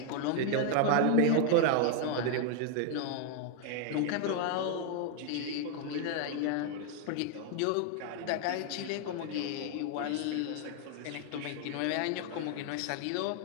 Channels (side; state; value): both; different; correlation 0.00